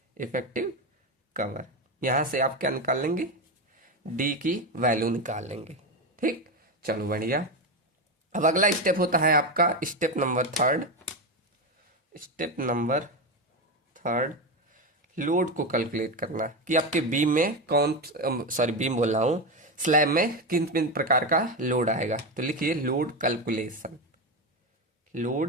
इफेक्टिव कवर। यहां से आप क्या निकाल लेंगे, डी की वैल्यू निकाल लेंगे, ठीक। चलो बढ़िया। अब अगला स्टेप होता है आपका step number third. Step number third, load को कैलकुलेट करना, कि आपके बीम में कौन, सॉरी बीम बोल रहा हूं, स्लैब में किन किन प्रकार का लोड आएगा। तो लिखिए लोड कैलकुलेशन,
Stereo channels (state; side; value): normal; both; correlation 0.14